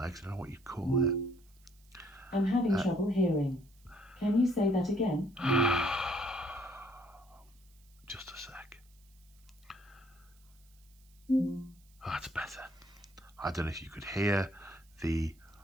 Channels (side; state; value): right; noise; hiss, 30 dB below the sound